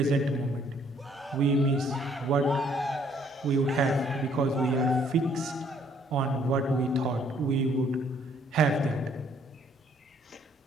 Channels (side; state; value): both; normal; correlation 0.64